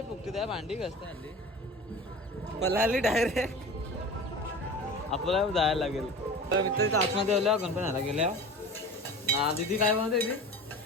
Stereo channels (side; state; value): both; normal; correlation 0.36